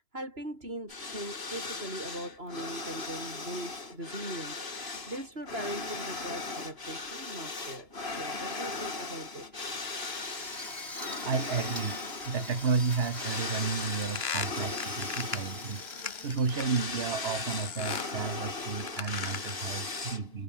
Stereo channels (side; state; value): left; late; 2.9 ms